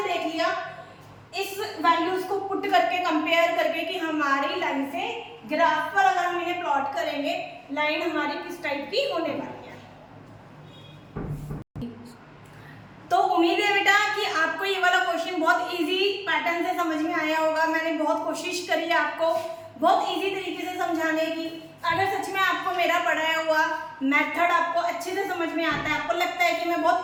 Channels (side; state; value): both; identical; correlation 1.00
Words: देख लिया इस वैल्यूज को पुट करके, कंपेयर करके कि हमारी लाइन से ग्राफ पर अगर हम इन्हें प्लॉट करेंगे, लाइन हमारी किस टाइप की होने वाली है। तो उम्मीद है बेटा कि आपको ये वाला क्वेश्चन बहुत इजी पैटर्न से समझ में आया होगा। मैंने बहुत कोशिश करी है आपको बहुत इजी तरीके से समझाने की। अगर सच में आपको मेरा पढ़ाया हुआ मेथड आपको अच्छे से समझ में आता है, आपको लगता है कि मैं